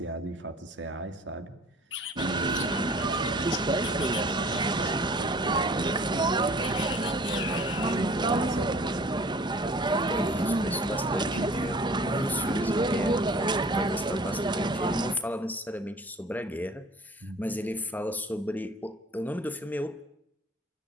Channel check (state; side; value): normal; both; correlation 0.49